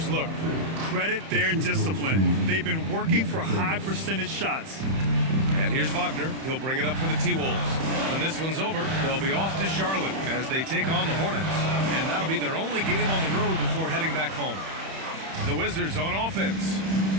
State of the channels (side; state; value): left; late; 31 ms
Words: look. Credit their discipline. They've been working for high percentage shots. And here's Wagner. He'll bring it up for the T-Wolves. When this one's over, they'll be off to Charlotte as they take on the Hornets. And that'll be their only game on the road before heading back home. The Wizards on offense.